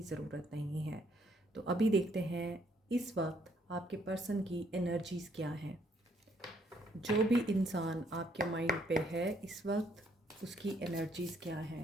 ज़रूरत नहीं है। तो अभी देखते हैं इस वक्त आपके पर्सन की एनर्जीज़ क्या हैं। जो भी इंसान आपके माइंड पे है इस वक्त, उसकी एनर्जीज़ क्या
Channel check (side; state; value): both; normal; correlation 0.69